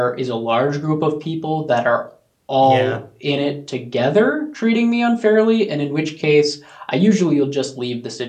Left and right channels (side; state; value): both; identical; correlation 1.00